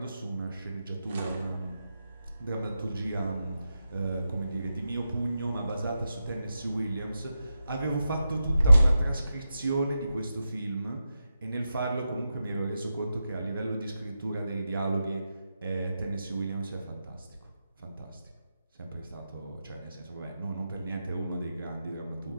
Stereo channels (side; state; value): both; inverted; correlation -0.88